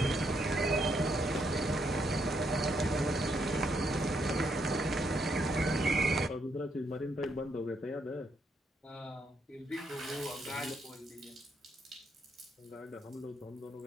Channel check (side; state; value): both; normal; correlation 0.76